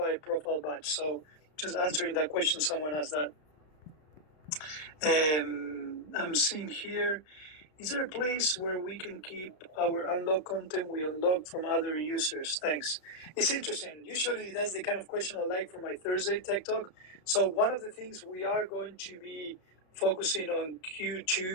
profile badge. So just answering that question, someone asked that. I'm seeing here, is there a place where we can keep our unlocked content we unlocked from other users? Thanks. It's interesting. Usually that's the kind of question I like for my Thursday Tech Talk. So one of the things we are going to be focusing on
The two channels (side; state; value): right; late; 33 ms